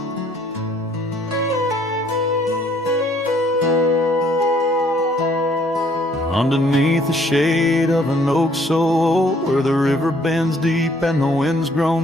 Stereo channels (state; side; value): normal; both; correlation 0.62